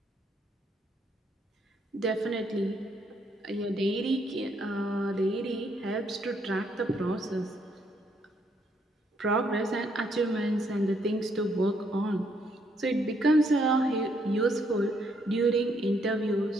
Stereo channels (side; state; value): both; normal; correlation 0.72